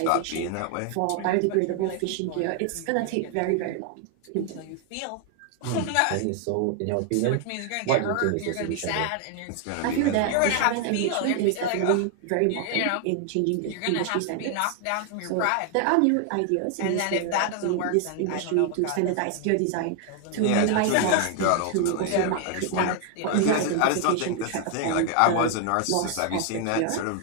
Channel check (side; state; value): both; different; correlation 0.00